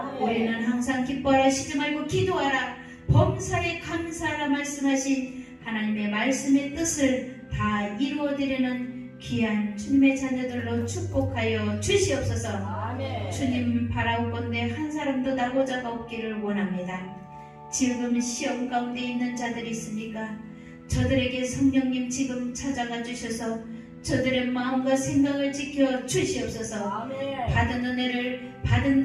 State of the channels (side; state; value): both; identical; correlation 1.00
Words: 우리는 항상 기뻐하라 쉬지 말고 기도하라 범사에 감사하라 말씀하신 하나님의 말씀의 뜻을 다 이루어드리는 귀한 주님의 자녀들로 축복하여 주시옵소서. 아멘. 주님 바라옵건대 한 사람도 나고자가 없기를 원합니다. 지금 시험 가운데 있는 자들이 있습니까? 저들에게 성령님 지금 찾아가 주셔서 저들의 마음과 생각을 지켜 주시옵소서. 아멘. 받은 은혜를